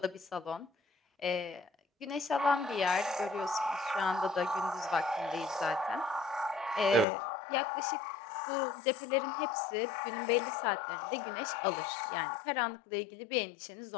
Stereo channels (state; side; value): drops out; right; at 7.1 s